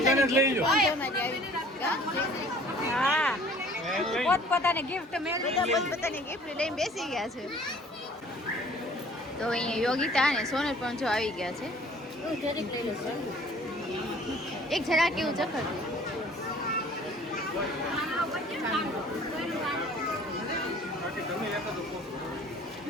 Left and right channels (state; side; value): normal; both; correlation 0.53